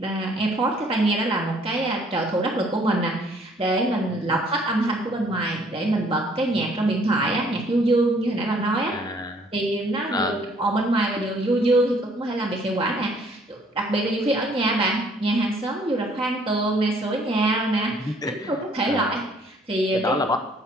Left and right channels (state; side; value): normal; both; correlation 0.61